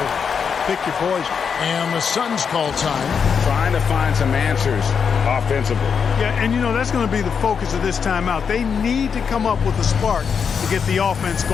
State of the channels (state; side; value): quieter; right; 6.5 dB